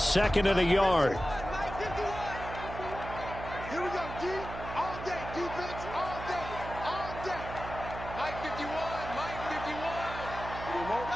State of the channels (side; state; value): right; noise; hum, 9 dB below the sound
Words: and a yard.